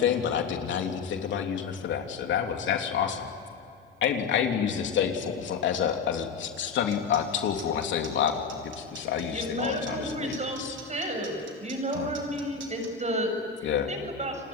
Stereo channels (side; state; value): right; quieter; 5.8 dB